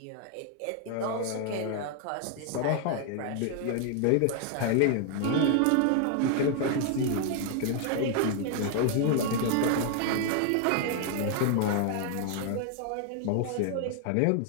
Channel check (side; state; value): both; different; correlation 0.00